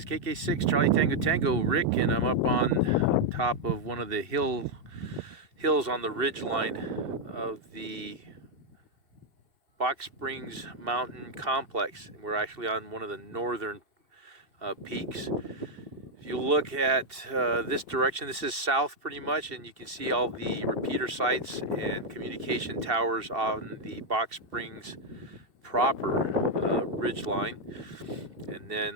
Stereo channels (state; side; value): late; left; 2.7 ms